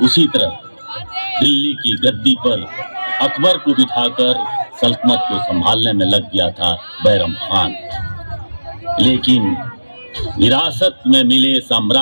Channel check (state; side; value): inverted; both; correlation -1.00